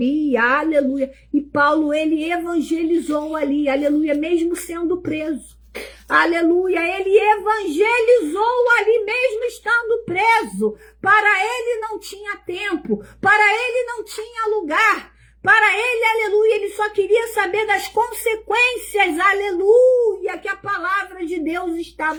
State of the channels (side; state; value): both; identical; correlation 1.00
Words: aleluia, e Paulo ele evangelizou ali, aleluia, mesmo sendo preso. Aleluia, ele evangelizou ali mesmo estando preso. Para ele não tinha tempo, para ele não tinha lugar. Para ele, aleluia, ele só queria saber das consequências, aleluia, que a palavra de Deus